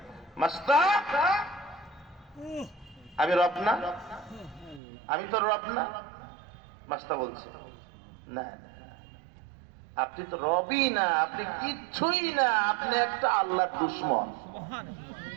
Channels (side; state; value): left; drops out; at 4.8 s